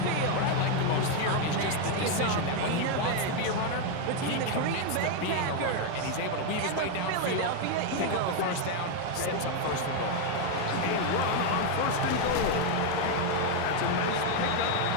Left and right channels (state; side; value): different; both; correlation 0.01